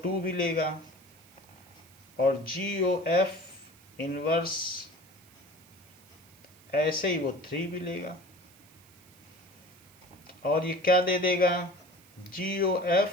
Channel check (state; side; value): noise; right; hiss, 26 dB below the sound